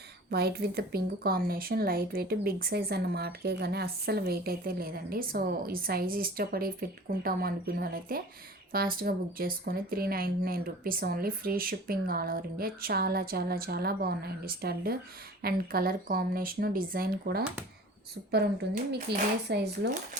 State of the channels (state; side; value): normal; both; correlation 0.42